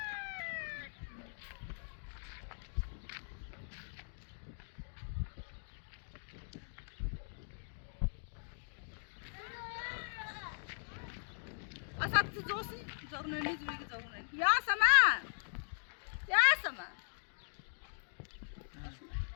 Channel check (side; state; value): right; silent; digital silence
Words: أصابت زوسي زورنني زوجي زورنني يا سمان يا سمان